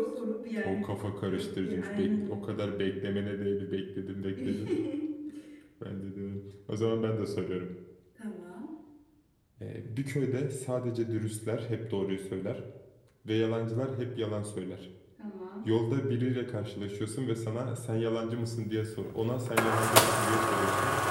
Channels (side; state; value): both; identical; correlation 1.00